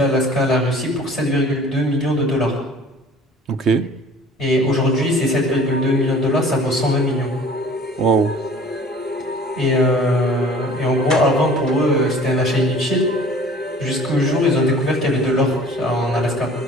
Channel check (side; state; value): both; normal; correlation 0.48